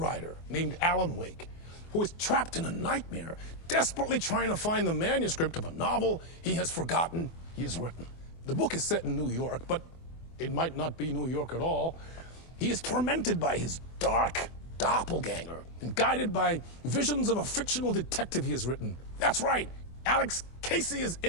named Alan Wake, who is trapped in a nightmare, desperately trying to find the manuscript of a novel he has forgotten he has written. The book is set in New York, but it might not be New York at all. He is tormented by his dark doppelganger and guided by visions of a fictional detective he has written. That's right, Alex Casey is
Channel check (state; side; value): late; right; 24 ms